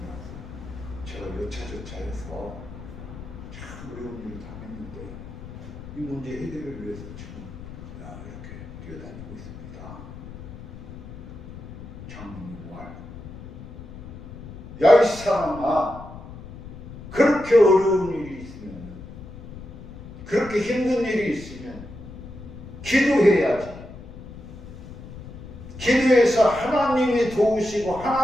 제가 여차저차해서 참 어려운 일을 당했는데 이 문제 해결을 위해서 지금 이렇게 뛰어다니고 있습니다. 장로님 말. 야, 이 사람아, 그렇게 어려운 일이 있으면, 그렇게 힘든 일이 있으면 기도해야지. 기도해서 하나님이 도우시고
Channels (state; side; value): noise; left; rumble, 14 dB below the sound